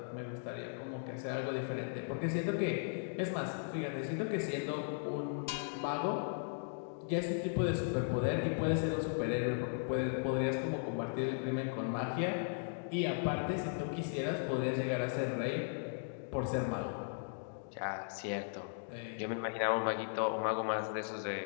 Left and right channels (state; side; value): silent; right; digital silence